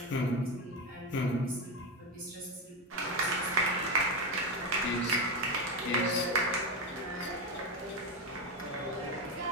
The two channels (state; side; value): normal; both; correlation 0.14